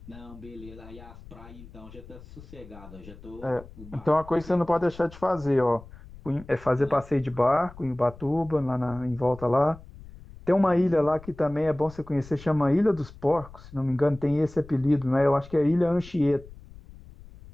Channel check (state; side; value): noise; left; rumble, 19 dB below the sound